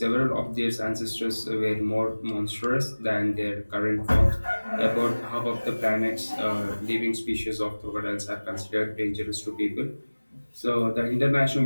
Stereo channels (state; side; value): inverted; both; correlation -1.00